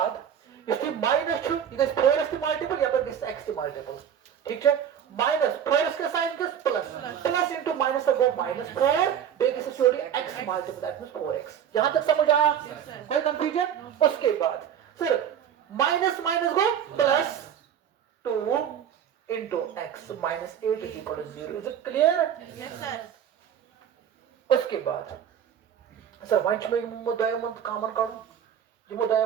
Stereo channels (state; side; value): quieter; left; 9.0 dB